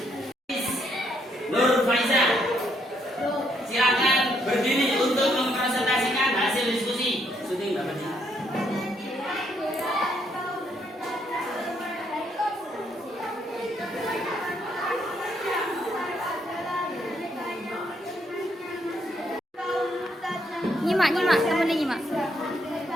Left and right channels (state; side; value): normal; both; correlation 0.73